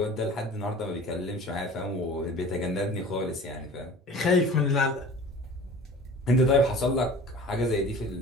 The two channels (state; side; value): normal; both; correlation 0.42